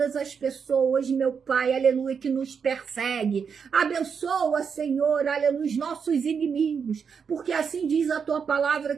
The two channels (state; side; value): quieter; left; 6.4 dB